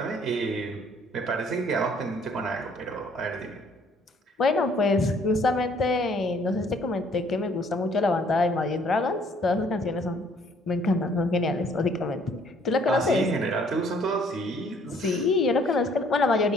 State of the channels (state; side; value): normal; both; correlation 0.61